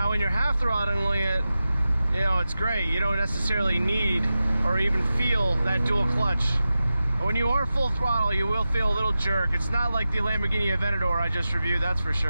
when you're half throttling it, you know, it's great. You don't necessarily need or even feel that dual clutch. But when you are full throttle, you will feel a little jerk. It's not like the Lamborghini Aventador I just reviewed, that's for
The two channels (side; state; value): both; inverted; correlation -0.93